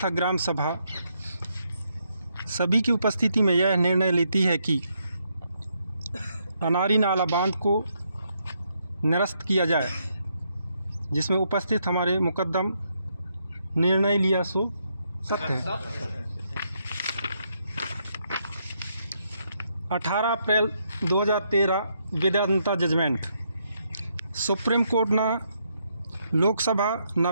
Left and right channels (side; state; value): both; inverted; correlation -0.77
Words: ग्राम सभा सभी की उपस्थिति में यह निर्णय लेती है कि अनारी नाला बांध को निरस्त किया जाए, जिसमें उपस्थित हमारे मुकद्दम निर्णय लिया सो सत्य है। 18 अप्रैल 2013 वेदांता जजमेंट। सुप्रीम कोर्ट ना लोकसभा ना